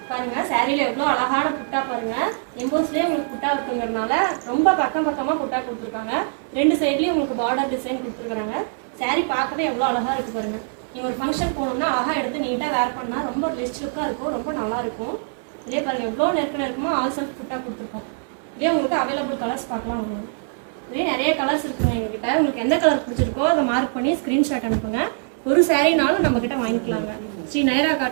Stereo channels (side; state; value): left; silent; digital silence